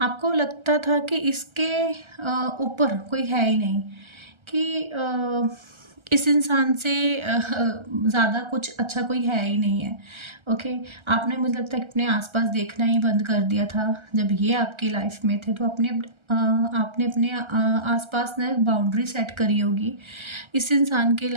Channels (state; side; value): late; left; 1.3 ms